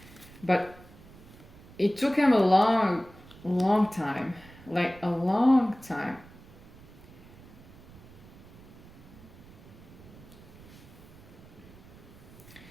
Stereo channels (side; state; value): right; noise; rumble, 20 dB below the sound